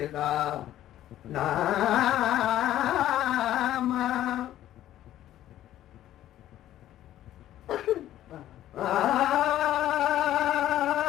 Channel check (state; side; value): quieter; right; 12.9 dB